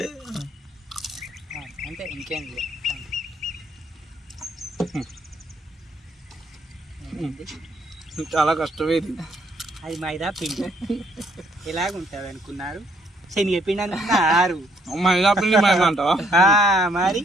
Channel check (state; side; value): normal; both; correlation 0.68